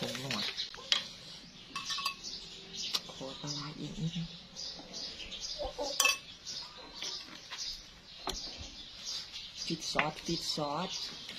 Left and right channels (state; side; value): identical; both; correlation 1.00